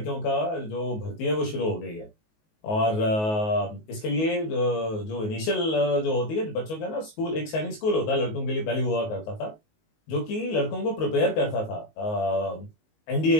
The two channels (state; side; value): late; right; 19 ms